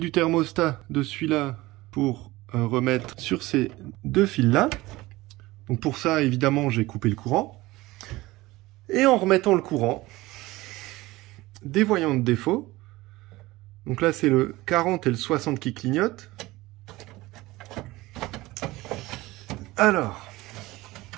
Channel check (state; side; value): quieter; left; 19.4 dB